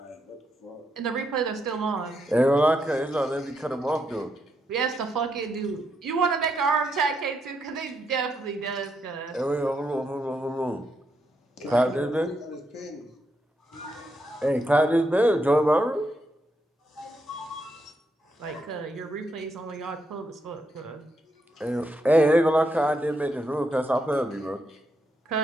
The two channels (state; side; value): normal; both; correlation 0.80